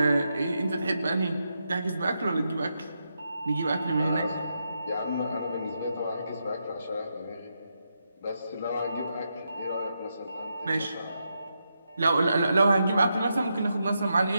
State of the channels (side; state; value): both; inverted; correlation -0.84